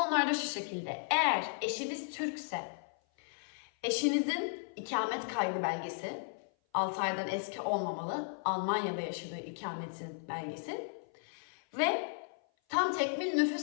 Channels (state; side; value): silent; right; 54 dB below the other